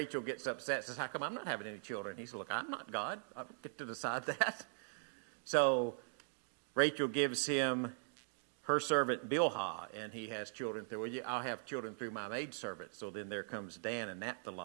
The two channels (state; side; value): silent; left; digital silence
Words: gets upset, says, how come I'm not having any children? He says, look, I'm not God. I don't get to decide that. So Rachel gives him her servant Bilhah, and he has children through, I'll have children through my maidservant. So then there comes Dan and